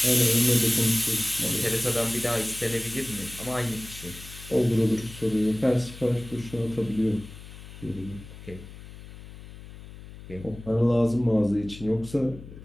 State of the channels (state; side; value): noise; left; hum, 15 dB below the sound